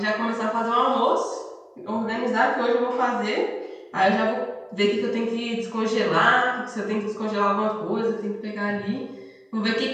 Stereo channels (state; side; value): identical; both; correlation 1.00